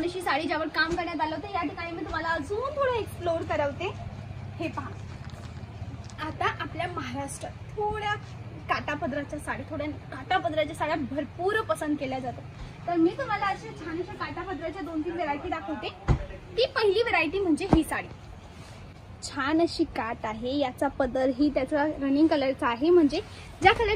अशी साडी ज्यावर काम करण्यात आलं होतं। या ठिकाणी मी तुम्हाला अजून थोडं एक्सप्लोर करवते। हे पहा आता आपल्या महाराष्ट्रात थोड्या काटापदराच्या साड्या, थोड्या काटापदराच्या साड्या भरपूर पसंत केल्या जातात। तर मी तुम्हाला अशा छान अशा काटापदराच्या 2-3 व्हरायटी दाखवते। ती पहिली व्हरायटी म्हणजे ही साडी। छान अशी काट आहे, याचा पदरही त्याचा रनिंग कलरचा आहे, म्हणजे ज्या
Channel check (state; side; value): identical; both; correlation 1.00